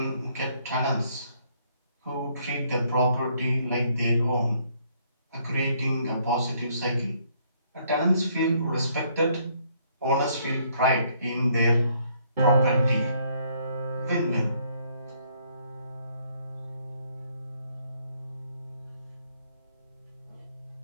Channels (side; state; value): both; inverted; correlation -0.67